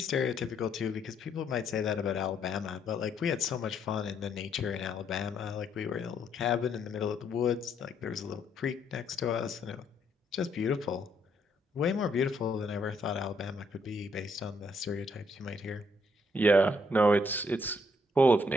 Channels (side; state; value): both; normal; correlation 0.71